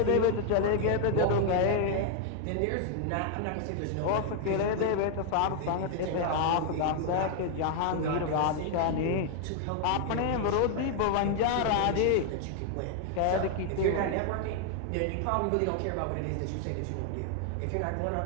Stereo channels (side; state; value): both; different; correlation 0.00